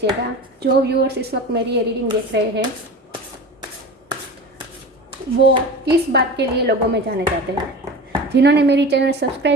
जो व्यूअर्स इस वक्त मेरी ये रीडिंग देख रहे हैं, वो किस बात के लिए लोगों में जाने जाते हैं। जिन्होंने मेरी चैनल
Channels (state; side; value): normal; both; correlation 0.32